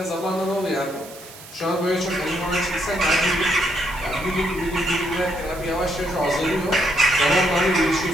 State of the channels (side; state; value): right; noise; hiss, 17 dB below the sound